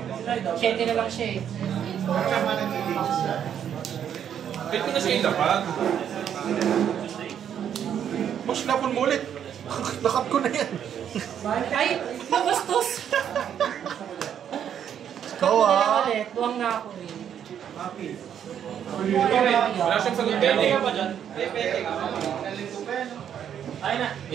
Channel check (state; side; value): quieter; left; 9.1 dB